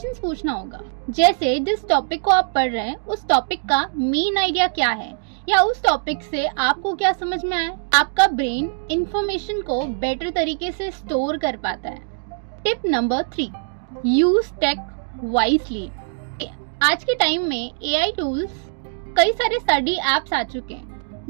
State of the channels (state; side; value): silent; left; digital silence